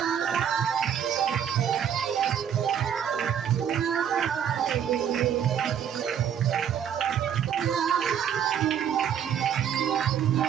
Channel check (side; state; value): left; quieter; 8.7 dB